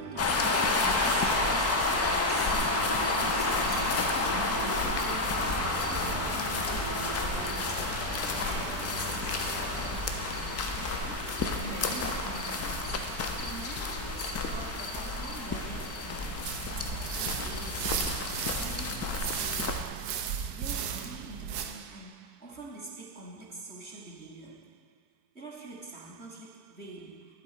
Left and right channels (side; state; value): left; late; 4.5 ms